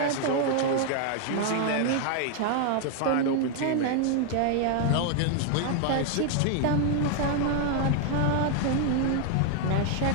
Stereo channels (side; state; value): both; different; correlation 0.00